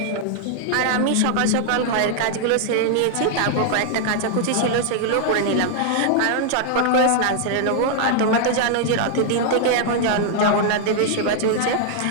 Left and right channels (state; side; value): different; both; correlation 0.00